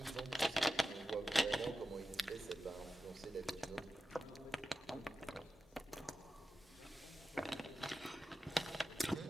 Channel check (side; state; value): both; normal; correlation 0.93